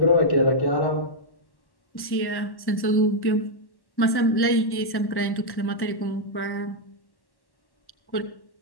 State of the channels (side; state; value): right; late; 1.1 ms